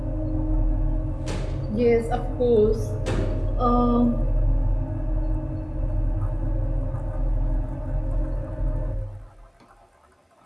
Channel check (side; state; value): both; identical; correlation 1.00